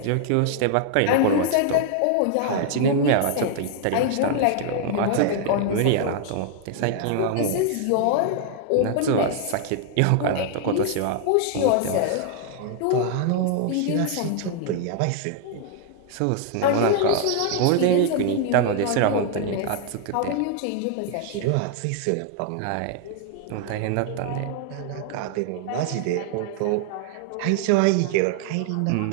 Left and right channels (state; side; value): different; both; correlation 0.00